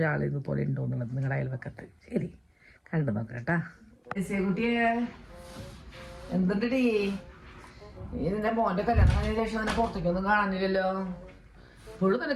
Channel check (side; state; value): both; identical; correlation 1.00